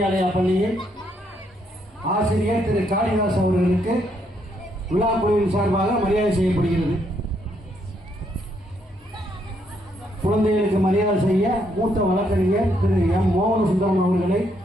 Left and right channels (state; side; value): normal; both; correlation 0.74